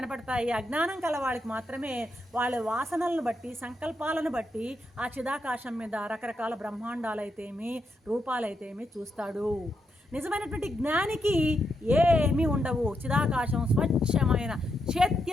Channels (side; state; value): both; normal; correlation 0.82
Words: అజ్ఞానం కలవాడికి మాత్రమే వాళ్ళ వాసనలను బట్టి, సంకల్పాలను బట్టి ఆ చిదాకాశం మీద రకరకాల బ్రహ్మాండాలైతేమి, రూపాలైతేమి చూస్తాడు. నిజమైనటువంటి జ్ఞానికి ఏమీ ఉండవు. చిదాకాశం స్వచ్ఛమైన